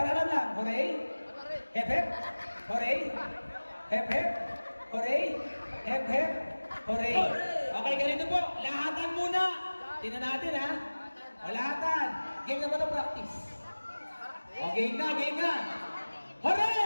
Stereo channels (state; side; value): inverted; both; correlation -1.00